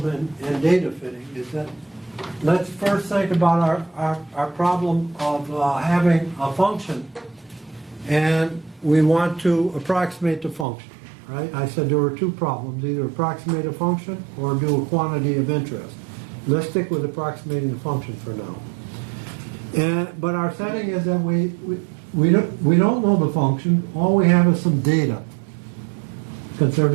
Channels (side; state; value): left; drops out; at 10.7 s